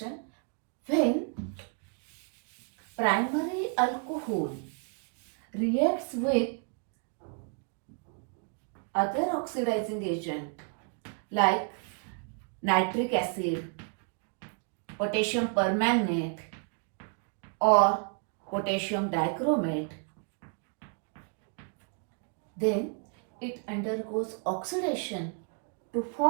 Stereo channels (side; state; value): left; quieter; 39.8 dB